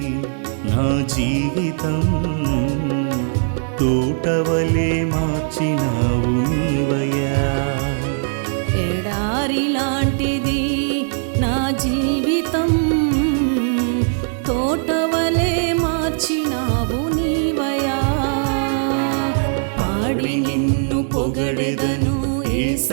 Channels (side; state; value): left; silent; 66 dB below the other